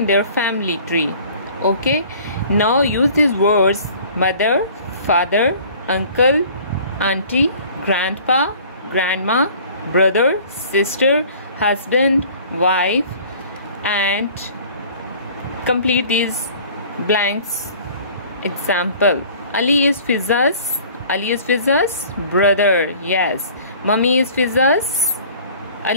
their family tree. Okay, now use these words: mother, father, uncle, auntie, grandpa, grandma, brother, sister, husband, wife, and complete these blanks. Example: Ali is Fiza's brother. Yes. Mummy is Fiza's.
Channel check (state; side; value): inverted; both; correlation -0.49